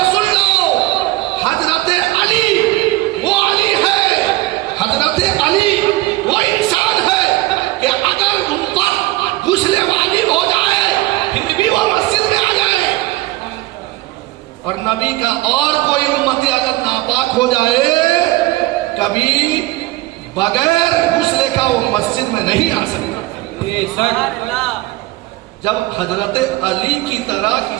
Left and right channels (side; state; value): left; quieter; 19.0 dB